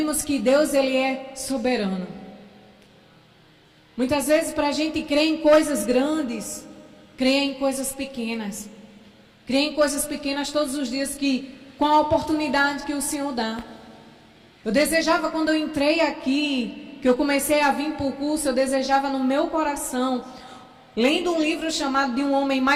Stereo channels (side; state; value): both; identical; correlation 1.00